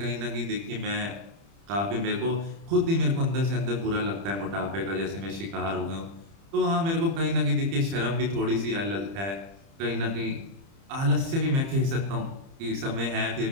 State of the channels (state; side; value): late; left; 30 ms